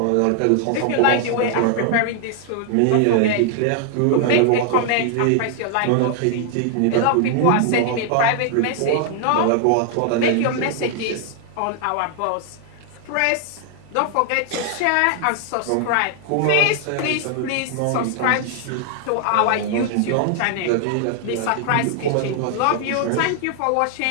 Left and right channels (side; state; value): both; different; correlation 0.00